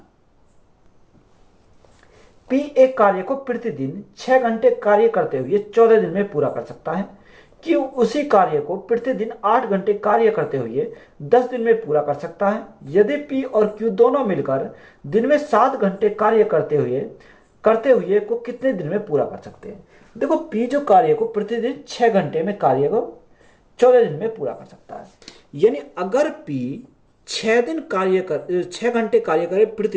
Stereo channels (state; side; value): identical; both; correlation 1.00